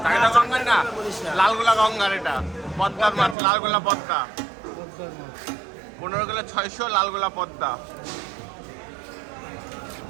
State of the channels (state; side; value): drops out; left; at 3.4 s